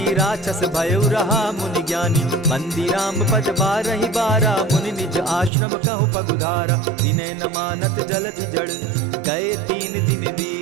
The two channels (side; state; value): left; drops out; at 5.5 s